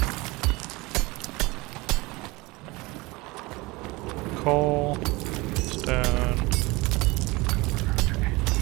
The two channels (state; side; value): quieter; left; 23.2 dB